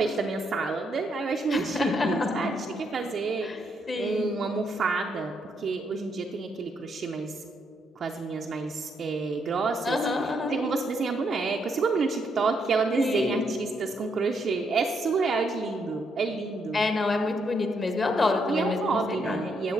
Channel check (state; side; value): normal; both; correlation 0.76